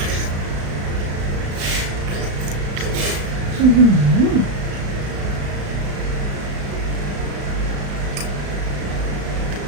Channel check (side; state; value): left; late; 35 ms